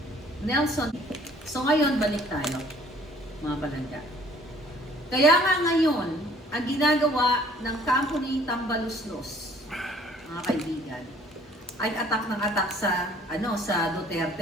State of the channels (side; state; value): both; normal; correlation 0.56